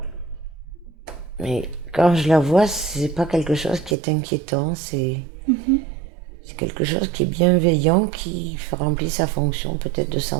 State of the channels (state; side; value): drops out; left; at 4.0 s